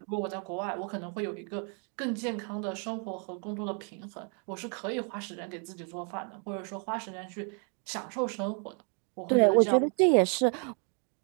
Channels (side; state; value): left; quieter; 39.4 dB